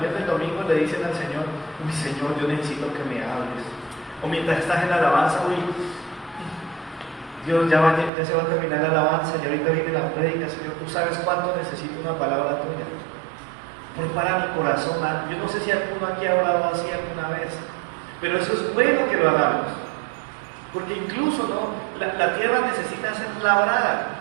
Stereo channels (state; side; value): drops out; left; at 8.1 s